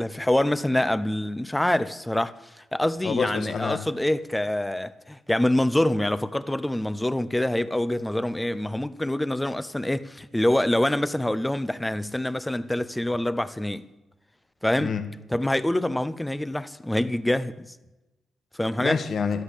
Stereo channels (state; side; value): normal; both; correlation 0.98